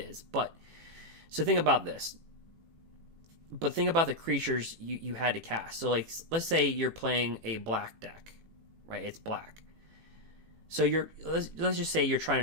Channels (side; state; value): left; late; 18 ms